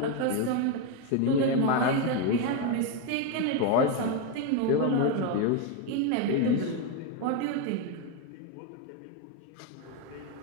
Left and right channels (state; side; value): different; both; correlation 0.02